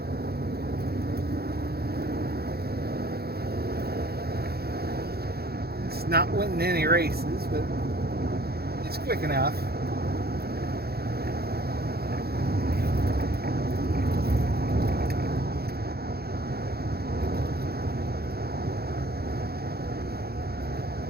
It's not winning any races, but it's quick enough.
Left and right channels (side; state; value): left; late; 0.46 ms